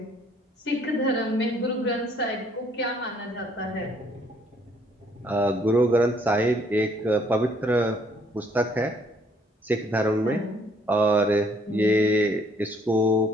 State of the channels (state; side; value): normal; both; correlation 0.64